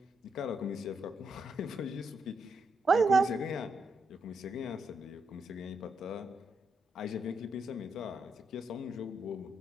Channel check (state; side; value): normal; both; correlation 0.80